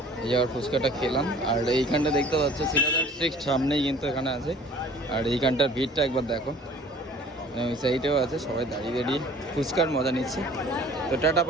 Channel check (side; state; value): both; normal; correlation 0.50